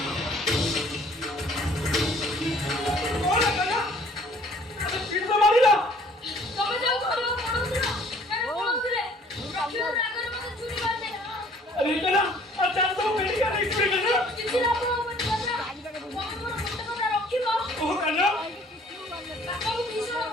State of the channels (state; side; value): normal; both; correlation 0.56